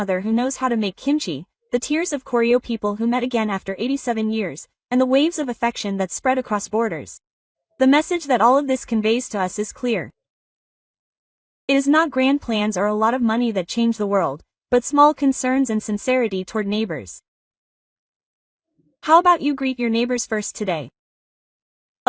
who knows how to make kimchi, the tears of Koryo people who met again after 87 years, and the waves of affection that spread across borders. The message that all of this conveys to us is clear. It is not grand plans or a lot of money that change the world, but small concerns and sincerity toward neighbors. How about you greet your neighbors first today?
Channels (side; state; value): both; identical; correlation 1.00